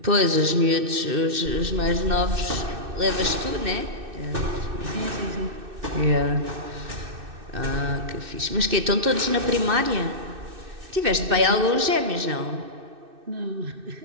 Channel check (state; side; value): late; left; 2.6 ms